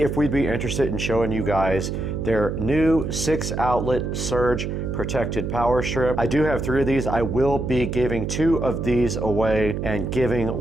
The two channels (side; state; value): right; noise; hum, 3 dB below the sound